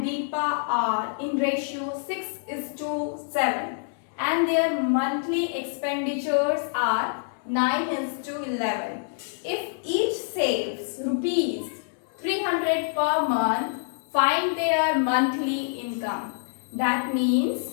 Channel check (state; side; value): silent; right; 61 dB below the other